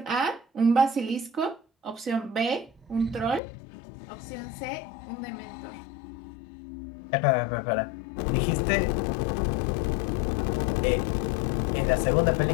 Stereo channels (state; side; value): drops out; right; at 3.4 s